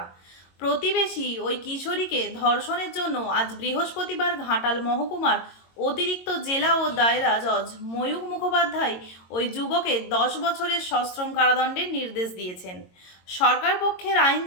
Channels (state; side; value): late; right; 22 ms